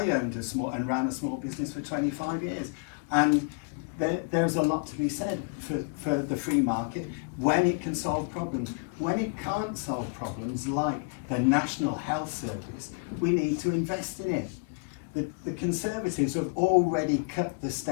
owned and ran a small business for 25 years. And there's a lot to be said for the free market when it can solve problems. When it can't solve problems like the National Health Service, we need to invest in it. The Conservatives have already cut the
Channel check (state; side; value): quieter; right; 34.6 dB